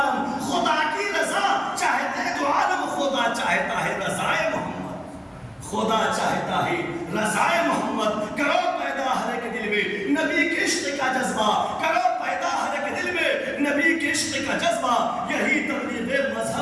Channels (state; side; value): identical; both; correlation 1.00